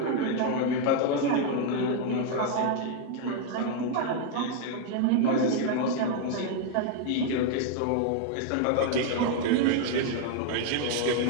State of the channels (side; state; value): both; different; correlation 0.01